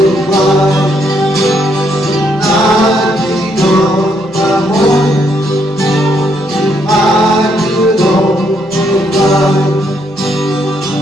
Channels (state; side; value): noise; right; hum, 27 dB below the sound